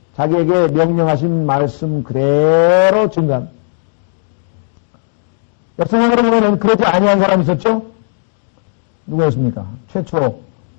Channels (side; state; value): right; silent; digital silence